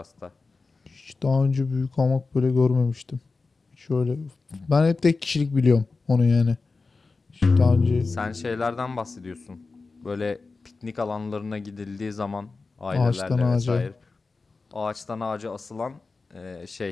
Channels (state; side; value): quieter; right; 4.0 dB